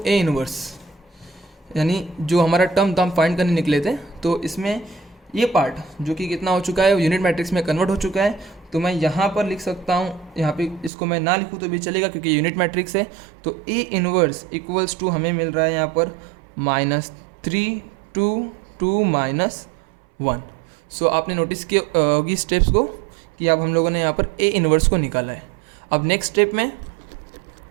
इनवर्स, यानी जो हमारा टर्म था हम फाइंड करने निकले थे, तो इसमें ये पार्ट जो कि कितना हो चुका है यूनिट मैट्रिक्स में कन्वर्ट हो चुका है। तो मैं यहाँ पर लिख सकता हूँ, यहाँ पे इसको मैं ना लिखूँ तो भी चलेगा क्योंकि यूनिट मैट्रिक्स है। तो A इनवर्स इक्वल्स टू हमें मिल रहा है यहाँ पर -3 2 2 -1। सो आपने नोटिस किया होगी स्टेप्स को कि अब हम लोगों ने यहाँ पर A इनवर्स को निकाला है। अब नेक्स्ट स्टेप में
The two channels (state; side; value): drops out; left; at 10.9 s